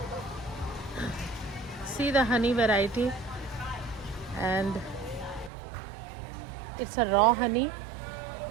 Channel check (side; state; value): left; drops out; at 5.5 s